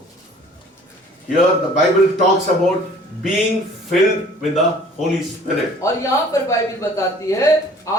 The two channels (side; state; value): both; normal; correlation 0.51